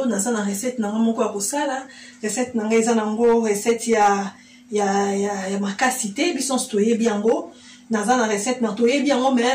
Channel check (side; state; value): both; identical; correlation 1.00